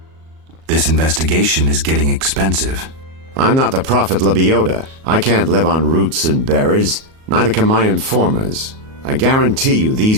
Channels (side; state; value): left; late; 37 ms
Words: This investigation is getting expensive. I'm not the Prophet Lebioda. I can't live on roots and berries. Neither can my informers. I guarantee you